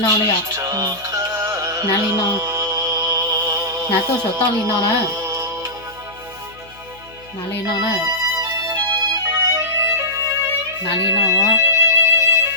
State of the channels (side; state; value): left; noise; hum, 24 dB below the sound